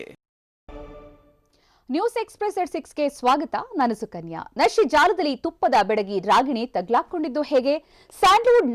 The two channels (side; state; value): both; identical; correlation 1.00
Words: ನ್ಯೂಸ್ ಎಕ್ಸ್‌ಪ್ರೆಸ್ ಎಟ್ 6 ಗೆ ಸ್ವಾಗತ. ನಾನು ಸುಕನ್ಯಾ. ನಶೆ ಜಾಲದಲ್ಲಿ ತುಪ್ಪದ ಬೆಡಗಿ ರಾಗಿಣಿ ತಗ್ಲಾಕೊಂಡಿದ್ದು ಹೇಗೆ? ಸ್ಯಾಂಡಲ್ವುಡ್